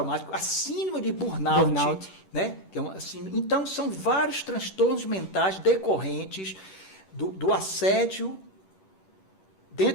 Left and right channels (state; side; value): late; right; 10 ms